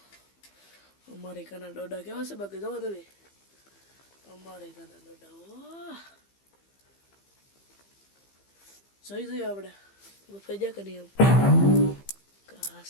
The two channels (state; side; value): late; right; 15 ms